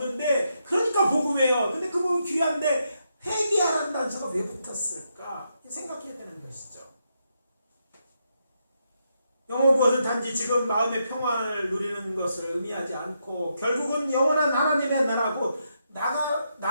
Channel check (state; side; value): inverted; both; correlation -0.81